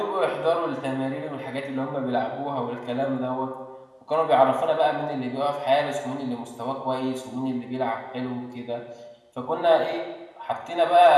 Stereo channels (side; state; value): both; identical; correlation 1.00